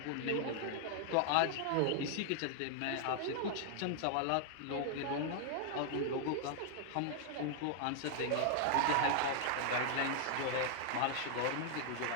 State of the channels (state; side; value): different; both; correlation 0.00